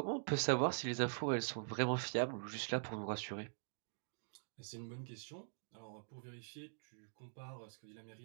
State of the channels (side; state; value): left; silent; digital silence